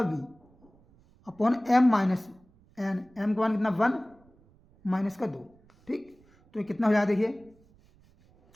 b upon m minus n, m का मान कितना 1 माइनस का 2। ठीक, तो ये कितना हो जाएगा देखिए,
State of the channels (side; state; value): right; noise; rumble, 30 dB below the sound